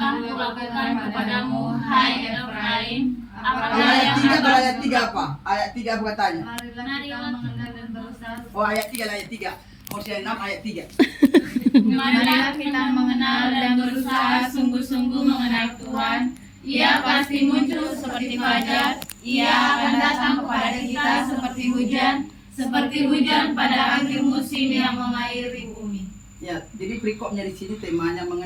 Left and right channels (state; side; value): identical; both; correlation 1.00